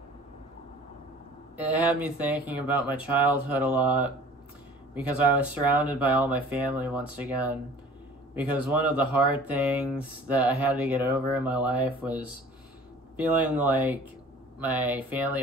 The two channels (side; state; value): both; normal; correlation 0.47